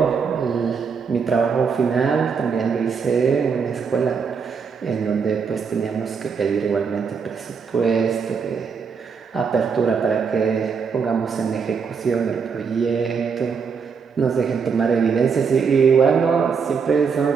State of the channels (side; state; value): left; quieter; 5.9 dB